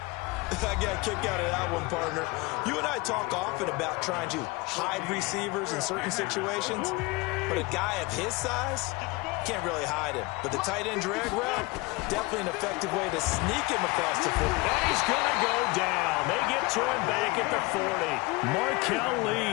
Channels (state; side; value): quieter; right; 24.3 dB